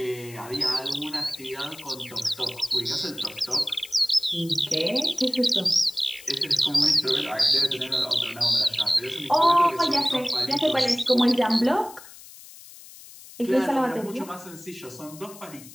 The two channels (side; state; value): left; noise; hiss, 18 dB below the sound